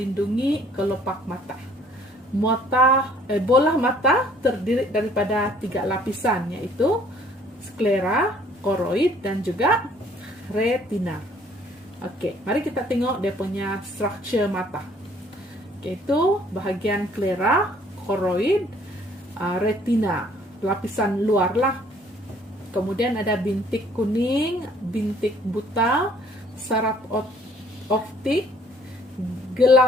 kelopak mata. Bola mata terdiri daripada 3 lapisan, yaitu sklera, koroid, dan juga retina. Oke, mari kita tengok dia punya structure mata. Yaitu bahagian sklera, koroid, retina, lapisan luar lah. Kemudian ada bintik kuning, bintik buta, saraf optik,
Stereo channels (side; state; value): both; normal; correlation 0.59